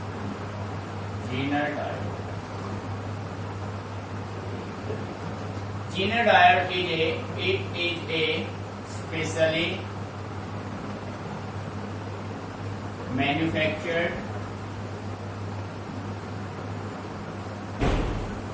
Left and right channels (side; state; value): both; identical; correlation 1.00